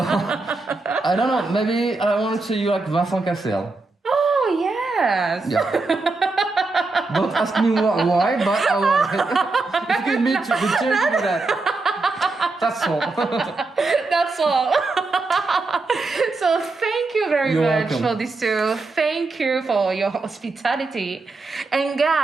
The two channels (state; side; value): quieter; left; 3.6 dB